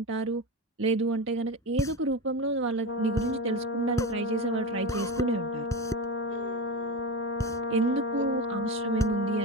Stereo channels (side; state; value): both; normal; correlation 0.21